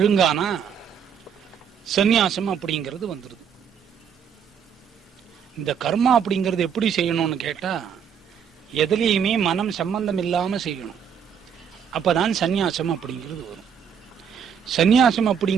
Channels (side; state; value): left; quieter; 7.6 dB